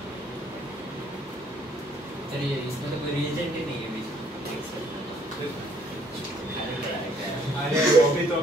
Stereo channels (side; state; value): both; normal; correlation 0.64